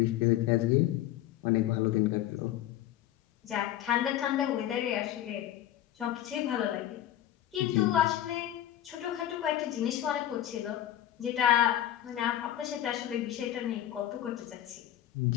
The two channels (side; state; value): right; quieter; 12.5 dB